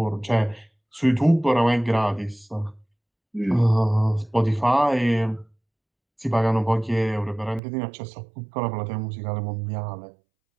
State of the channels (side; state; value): left; drops out; at 7.6 s